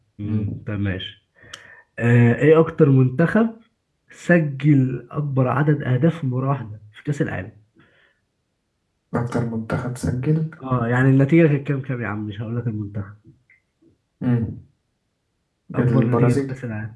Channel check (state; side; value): identical; both; correlation 1.00